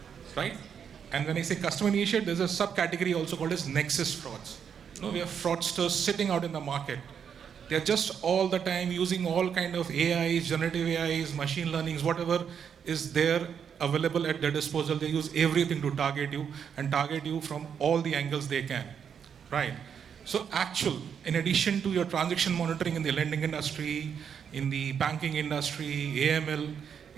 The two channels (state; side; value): quieter; left; 7.5 dB